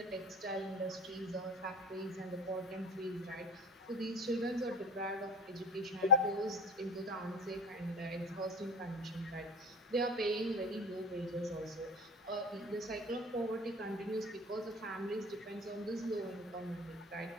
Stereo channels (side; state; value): both; normal; correlation 0.34